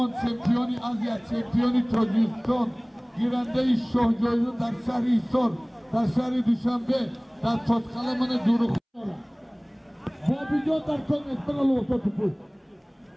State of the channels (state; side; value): identical; both; correlation 1.00